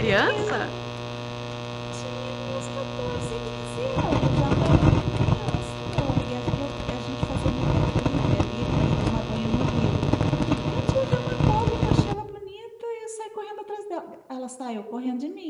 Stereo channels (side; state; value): both; identical; correlation 1.00